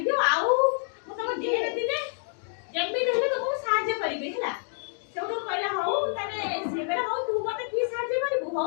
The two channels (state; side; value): silent; right; digital silence